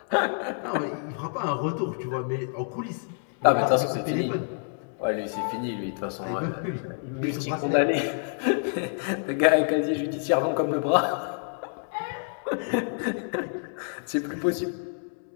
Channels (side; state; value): right; silent; 60 dB below the other